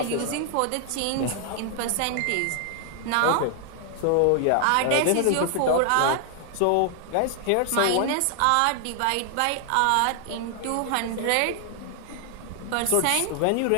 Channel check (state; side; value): different; both; correlation 0.00